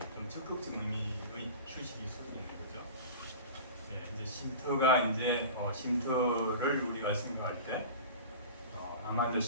좀 적극적 의미의 휴식이 있을 수 있는 거죠. 네, 이제 쉼터가 이제 쉼터를 우리가 생각할 때 암 환자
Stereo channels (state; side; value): inverted; both; correlation -0.36